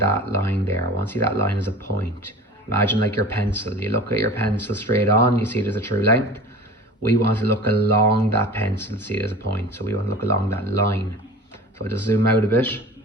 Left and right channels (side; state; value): both; normal; correlation 0.37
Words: line there. I want to see that line as a point. Imagine like your pencil. You look at your pencil straight on, you see it as a true length. We want to look along that pencil to see it as a point. So we want to look along that line. So I'll just zoom out a bit.